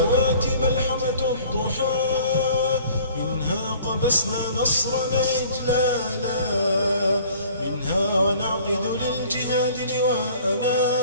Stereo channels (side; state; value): both; inverted; correlation -0.51